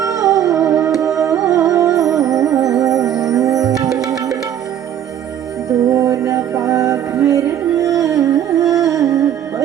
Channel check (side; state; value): left; quieter; 10.2 dB